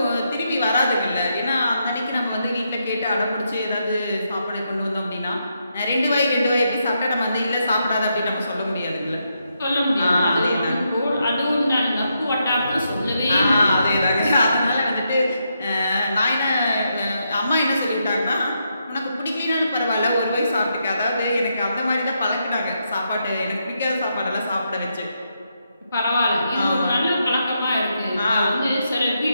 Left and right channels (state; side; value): inverted; both; correlation -0.81